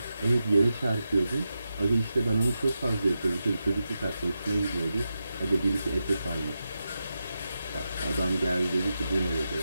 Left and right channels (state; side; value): inverted; both; correlation -0.89